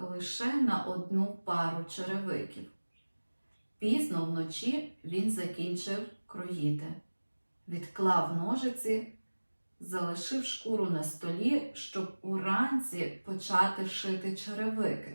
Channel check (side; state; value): both; inverted; correlation -1.00